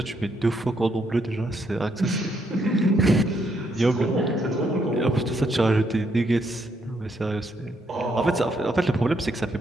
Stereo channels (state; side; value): normal; both; correlation 0.75